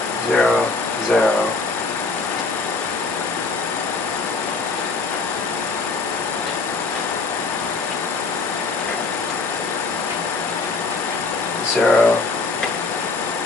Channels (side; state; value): right; quieter; 3.9 dB